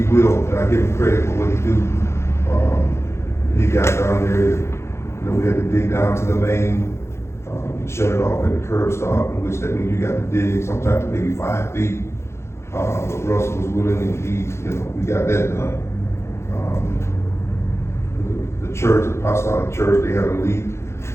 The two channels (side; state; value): right; late; 0.13 ms